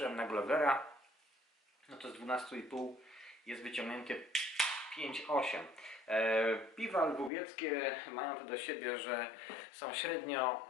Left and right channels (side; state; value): right; drops out; at 7.3 s